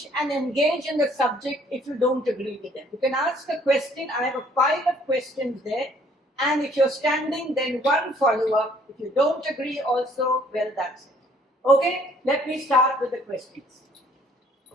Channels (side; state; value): both; normal; correlation 0.60